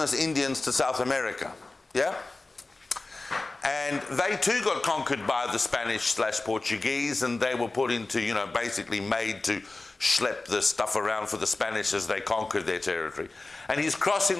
Indians to South America. Yeah? And they too got conquered by the Spanish/Portuguese, and they were put into, basically made to schlep the stuff around for the Spanish as they conquered their territory. And he's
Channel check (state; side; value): quieter; right; 3.2 dB